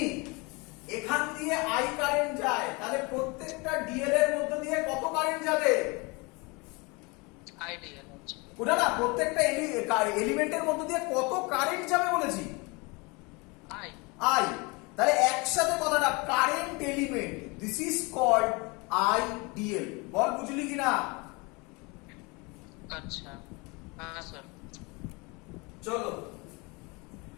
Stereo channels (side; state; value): right; quieter; 27.6 dB